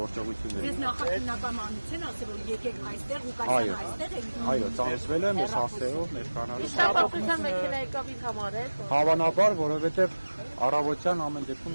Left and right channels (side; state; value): both; inverted; correlation -1.00